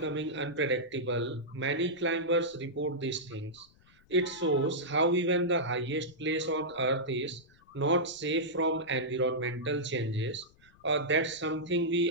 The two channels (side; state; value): left; noise; rumble, 30 dB below the sound